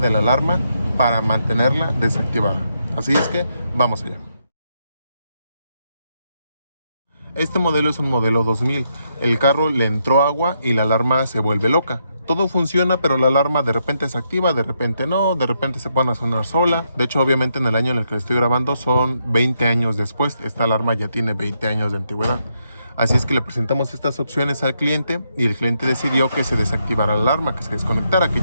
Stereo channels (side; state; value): both; inverted; correlation -0.79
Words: la alarma para mantenerla desactivada. Así es que vamos allá. Este modelo es un modelo 2000. El carro le entró agua y la alarma se vuelve loca. Todo funciona, pero la alarma de repente se activa, de repente no, de repente se pone a sonar sola. De hecho, obviamente en el año en el que estoy grabando son 20 años después. Esta alarma ya tiene 20 años de antigüedad. Así es que le presentamos estas opciones al cliente y el cliente decidió que se desactivara la alarma, que se desconectara, que